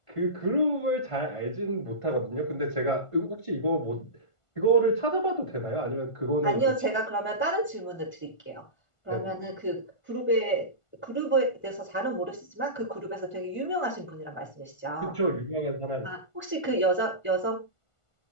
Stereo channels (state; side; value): late; right; 1.5 ms